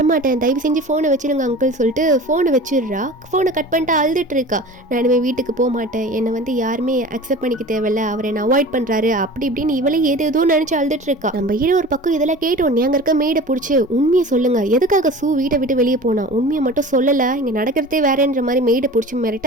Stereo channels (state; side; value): normal; both; correlation 0.38